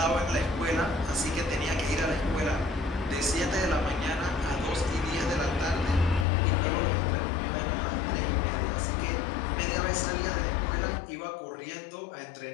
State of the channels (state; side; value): drops out; right; at 6.2 s